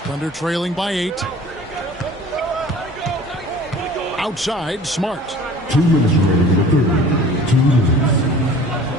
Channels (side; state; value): both; normal; correlation 0.46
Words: Thunder trailing by 8. Outside, Smart. 2 minutes remaining in the third. 2 minutes.